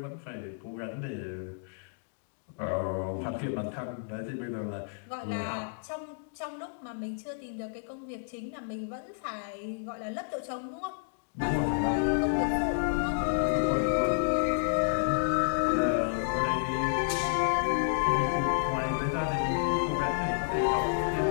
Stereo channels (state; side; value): silent; right; digital silence